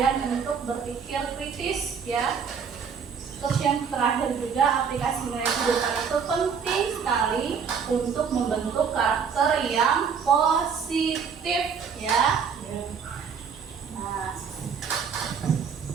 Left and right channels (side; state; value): left; quieter; 6.5 dB